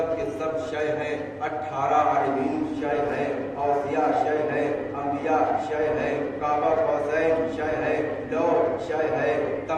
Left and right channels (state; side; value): identical; both; correlation 1.00